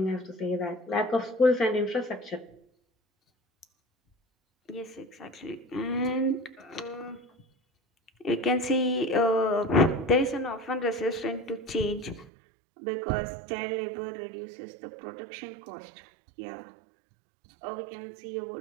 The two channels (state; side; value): drops out; left; at 12.3 s